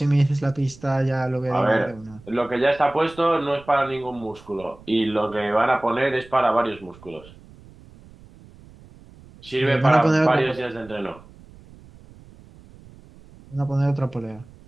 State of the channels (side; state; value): right; noise; rumble, 23 dB below the sound